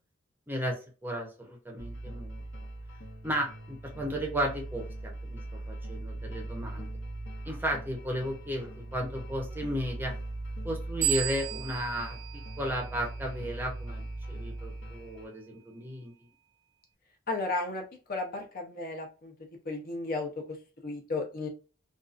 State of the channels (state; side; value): normal; both; correlation 0.51